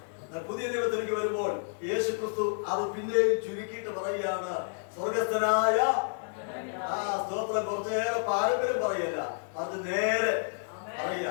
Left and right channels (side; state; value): right; silent; digital silence